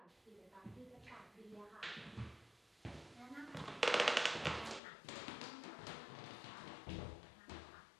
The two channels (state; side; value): drops out; right; at 4.8 s